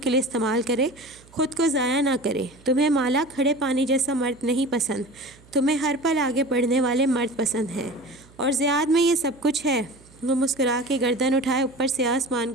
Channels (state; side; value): noise; right; hum, 26 dB below the sound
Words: لیے استعمال کرے، خود کو ضائع نہ کرے۔ تمہیں مالا کھڑے پانی جیسا مرد نہیں پسند، تمہیں ہر پل آگے بڑھنے والے مرد پسند ہیں، اور زیاد میں یہ سب کچھ ہے۔ وہ مسکرا کے گردن اٹھائے اوپر سے آسمان